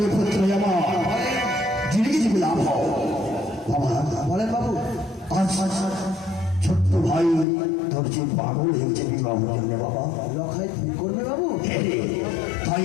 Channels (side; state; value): right; drops out; at 7.5 s